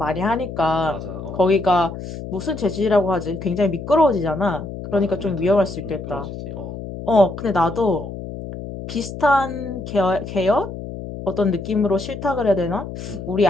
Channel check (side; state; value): left; noise; hum, 9 dB below the sound